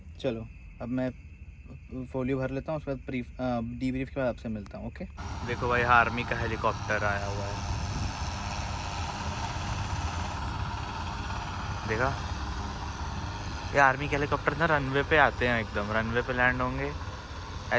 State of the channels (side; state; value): both; identical; correlation 1.00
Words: चलो अब मैं फोलियो भर लेता हूँ, उसके बाद डीब्रीफ के बाद आपसे मिलता हूँ। ओके। देखो भाई आर्मी का हेलीकॉप्टर आया हुआ है, देखा, ये आर्मी के हेलीकॉप्टर ना रनवे पे आते हैं, एकदम रनवे पे लैंड होंगे।